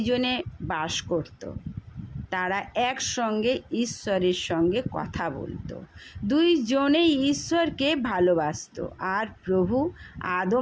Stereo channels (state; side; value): identical; both; correlation 1.00